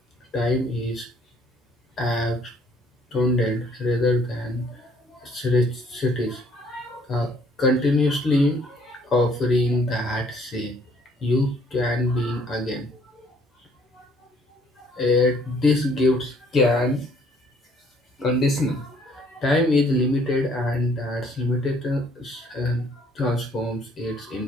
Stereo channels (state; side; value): normal; both; correlation 0.62